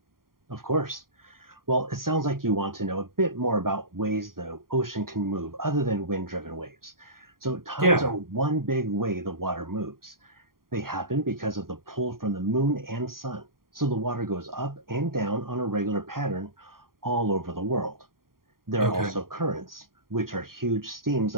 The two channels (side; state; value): left; late; 0.91 ms